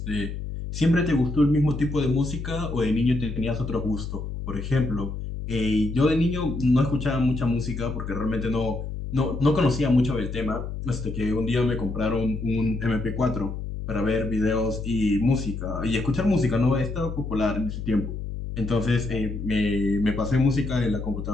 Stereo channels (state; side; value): noise; left; hum, 6 dB below the sound